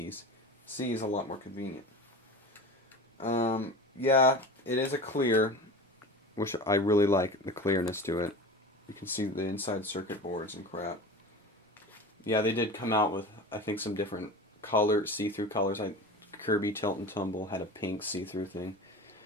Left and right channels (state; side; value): normal; both; correlation 0.33